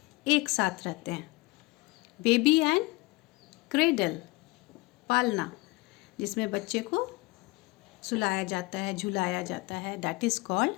एक साथ रहते हैं. बेबी एंड क्रेडल, पालना, जिसमें बच्चे को सुलाया जाता है, झुलाया जाता है, that is called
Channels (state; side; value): quieter; right; 23.9 dB